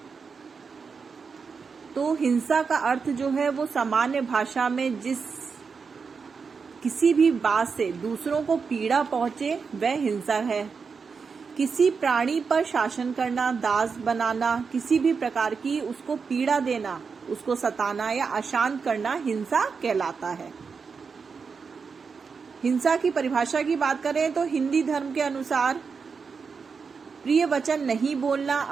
तो हिंसा का अर्थ जो है वो सामान्य भाषा में किसी भी बात से दूसरों को पीड़ा पहुंचे वह हिंसा है। किसी प्राणी पर शासन करना, दास बनाना, किसी भी प्रकार की उसको पीड़ा देना, उसको सताना या अशांत करना हिंसा कहलाता है। हिंसा की परिभाषा की बात करें तो हिंदी धर्म के अनुसार प्रिय वचन नहीं बोलना,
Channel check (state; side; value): quieter; left; 5.4 dB